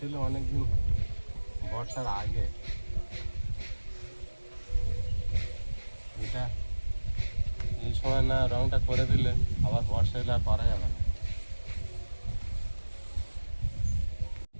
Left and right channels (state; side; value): inverted; both; correlation -1.00